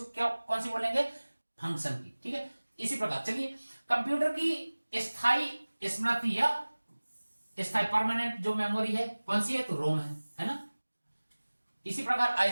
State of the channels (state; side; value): inverted; both; correlation -1.00